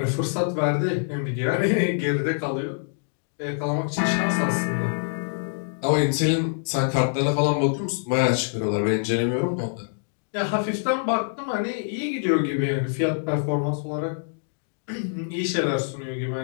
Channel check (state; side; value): silent; right; digital silence